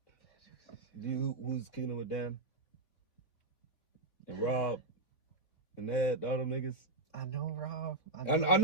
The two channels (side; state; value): right; late; 3.4 ms